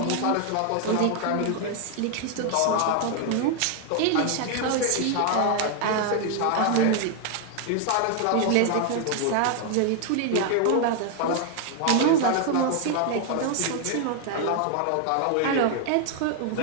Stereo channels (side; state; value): both; different; correlation 0.00